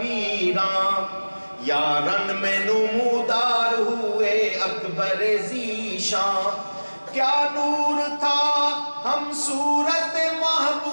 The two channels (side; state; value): both; inverted; correlation -1.00